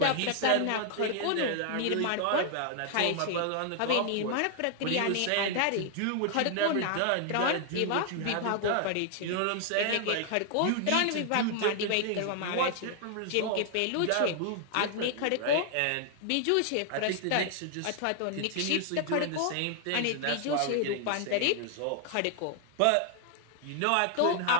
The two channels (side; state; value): both; different; correlation 0.00